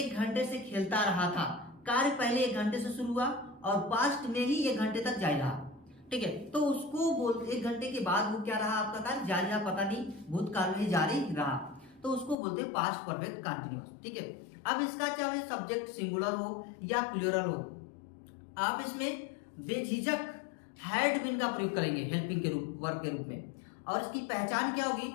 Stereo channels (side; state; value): right; drops out; at 12.4 s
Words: घंटे से खेलता रहा था, कार्य पहले 1 घंटे से शुरू हुआ और पास्ट में ही 1 घंटे तक जारी रहा। ठीक है, तो उसको बोलते 1 घंटे के बाद वो क्या रहा, आपका कार्य जारी रहा, पता नहीं, भूतकाल में ही जारी रहा, तो उसको बोलते हैं पास्ट परफेक्ट कंटिन्यूअस। ठीक है, अब इसका चाहे सब्जेक्ट सिंगुलर हो या प्लूरल हो, आप इसमें बेझिझक हैड बीन का प्रयोग करेंगे हेल्पिंग के रूप, वर्ब के रूप में। और इसकी पहचान क्या होगी,